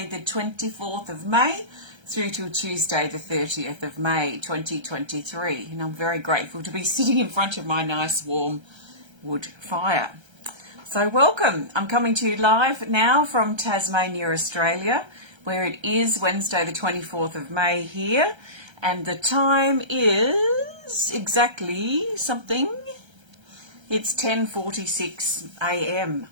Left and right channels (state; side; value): late; left; 1.3 ms